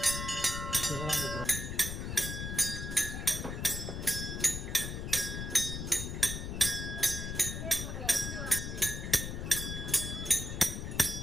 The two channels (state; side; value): noise; left; rumble, 5 dB below the sound